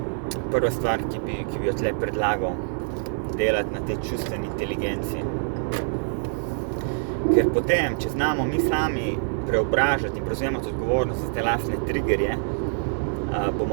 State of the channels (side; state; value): left; silent; 62 dB below the other